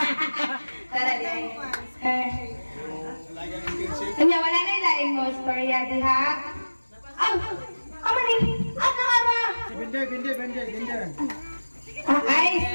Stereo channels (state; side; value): inverted; both; correlation -1.00